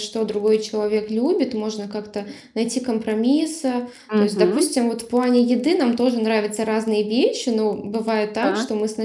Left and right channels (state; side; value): identical; both; correlation 1.00